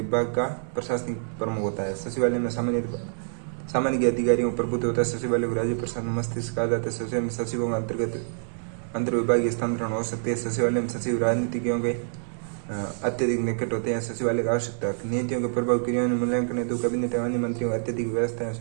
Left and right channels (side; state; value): left; silent; 61 dB below the other